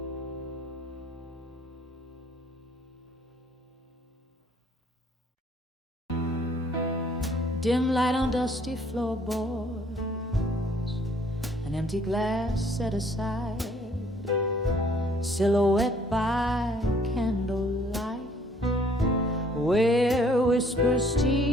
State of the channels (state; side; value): normal; both; correlation 0.61